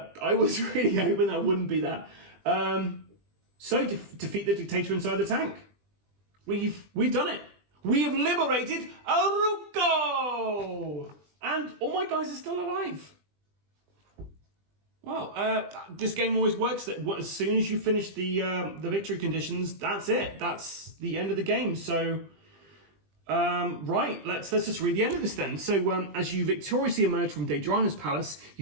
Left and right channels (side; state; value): left; late; 20 ms